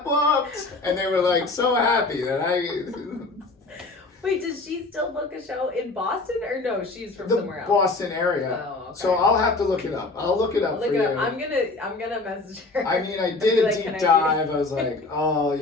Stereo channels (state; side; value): quieter; right; 3.4 dB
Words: booked. And they were like so happy that Wait, does she still book a show in Boston, or no? She's from the somewhere else. Boston area. Oh, okay. So I'll have to look it up. I'll look it up Look for it you. up. I'm gonna message her. I mean, I Be did a like, deep "Can I dive. I was like, oh,